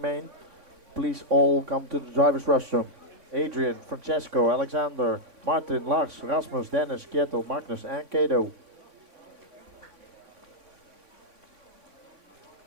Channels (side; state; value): left; late; 3.6 ms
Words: main, please all come to the driver's restroom. Adrian, Francesco, Alexander, Martin, Lars, Rasmus, Dennis, Kjetil, Magnus, and Kato.